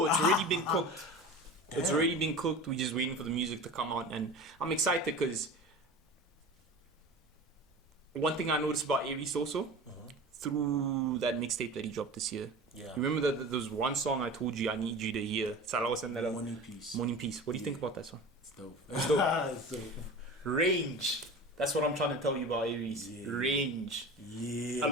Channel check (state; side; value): normal; both; correlation 0.35